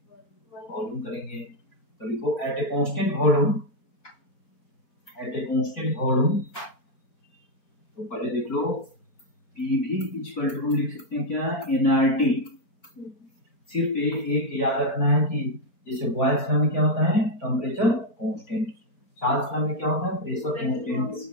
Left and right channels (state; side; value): late; right; 4.4 ms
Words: वॉल्यूम करेंगे। तो लिखो at a constant volume, at a constant volume. तो पहले देख लो पीवी इक्वल टू लिख सकते हैं क्या, एनआरटी। सिर्फ एक याद रखना है कि जैसे बॉयल्स लॉ में क्या होता है, टेम्परेचर कांस्टेंट, चार्ल्स लॉ में क्या होता है, प्रेशर कांस्टेंट,